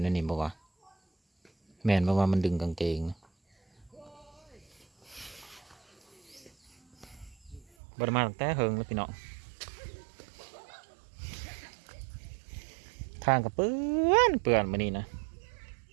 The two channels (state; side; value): drops out; left; at 7.7 s